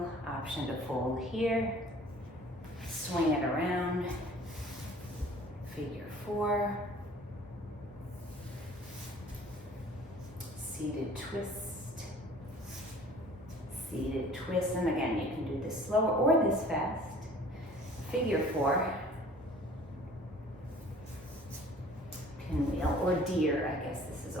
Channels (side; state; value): both; normal; correlation 0.50